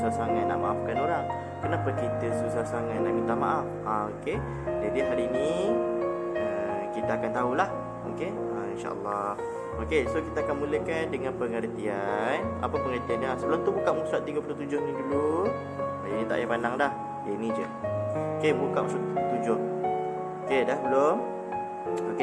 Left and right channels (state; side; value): identical; both; correlation 1.00